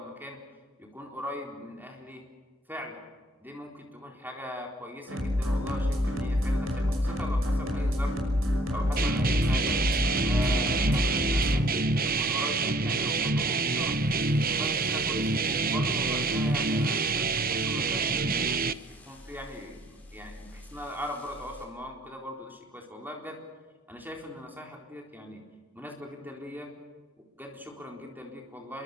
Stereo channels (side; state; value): both; normal; correlation 0.59